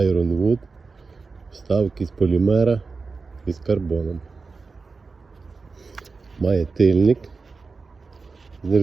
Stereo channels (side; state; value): left; quieter; 4.3 dB